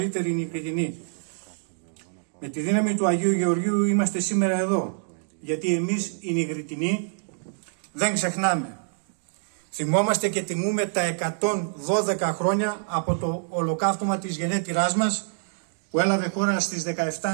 νικητινοί. Με τη δύναμη του Αγίου Γεωργίου είμαστε σήμερα εδώ, γιατί εμείς οι νικητινοί δεν ξεχνάμε. Θυμόμαστε και τιμούμε τα 112 χρόνια από το ολοκαύτωμα της γενέτειράς μας, που έλαβε χώρα στις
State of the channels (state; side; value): silent; left; digital silence